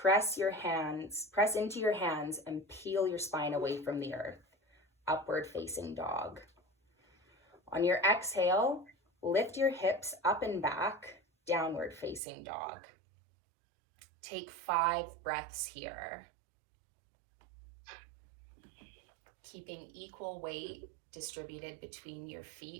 into your hands and peel your spine away from the earth, upward facing dog. On your exhale, lift your hips up and back, downward facing dog. Take 5 breaths here. Keeping equal weight distributed between your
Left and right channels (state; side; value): drops out; left; at 12.2 s